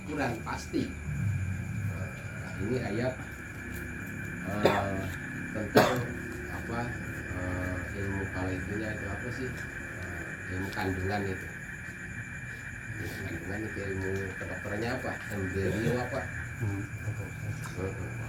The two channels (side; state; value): both; identical; correlation 1.00